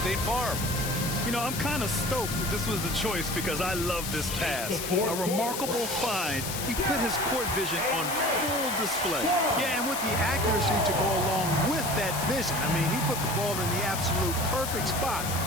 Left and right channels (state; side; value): noise; left; hiss, 5 dB below the sound